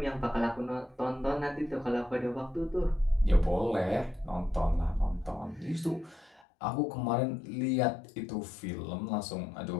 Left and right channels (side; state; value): right; drops out; at 6.5 s